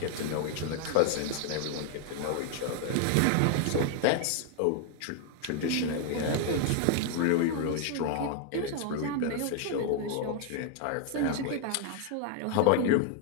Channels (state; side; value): different; both; correlation 0.00